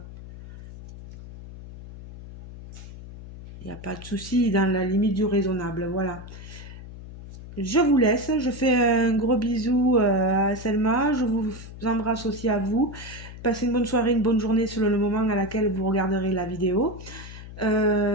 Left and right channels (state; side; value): noise; left; hum, 14 dB below the sound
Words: Il n'y a pas de souci, dans la limite du raisonnable. Voilà. Je vous laisse, je fais un gros bisou à Selma, je vous embrasse aussi à vous. Passez une bonne soirée, une bonne journée selon le moment à laquelle vous regarderez la vidéo.